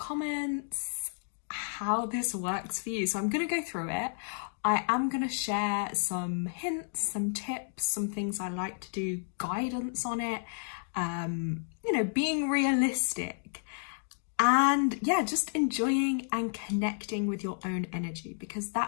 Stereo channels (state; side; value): silent; right; digital silence